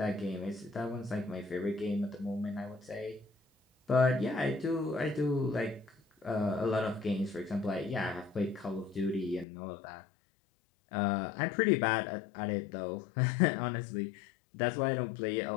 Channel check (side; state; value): right; drops out; at 9.5 s